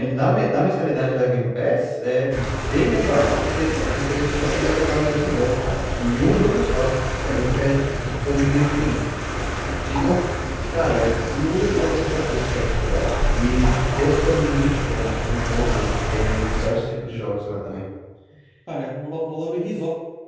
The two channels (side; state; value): both; identical; correlation 1.00